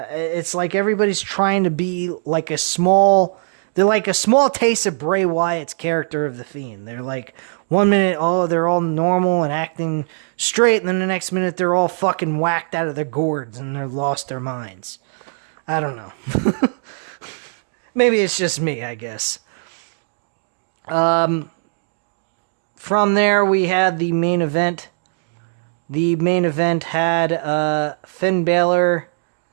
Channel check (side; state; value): left; silent; digital silence